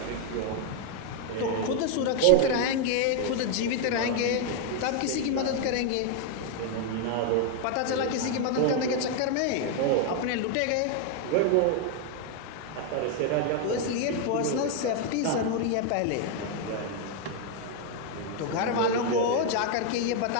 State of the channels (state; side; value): different; both; correlation 0.00